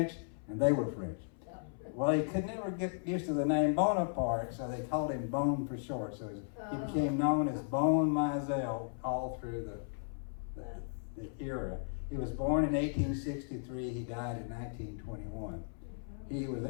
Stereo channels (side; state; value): right; silent; 54 dB below the other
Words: and they were French. Well, he could never get used to the name Bonaparte, so they called him Bone for short. So he became known as Bone Mizell all through the era. He was born in 1863. He died in 1921. He